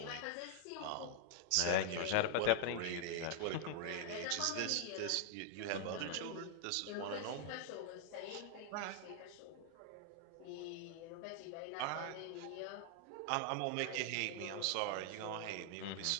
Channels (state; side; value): different; both; correlation 0.00